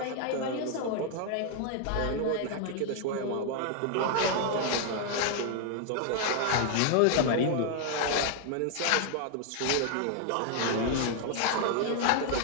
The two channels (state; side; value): different; both; correlation 0.00